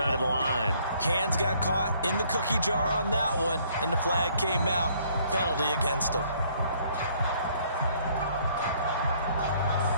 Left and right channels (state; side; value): inverted; both; correlation -0.63